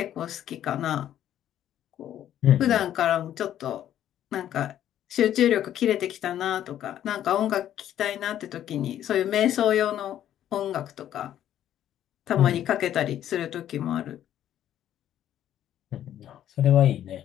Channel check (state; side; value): quieter; right; 11.3 dB